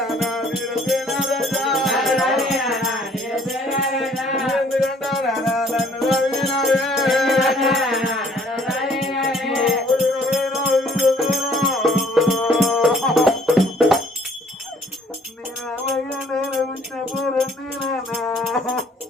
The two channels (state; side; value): normal; both; correlation 0.59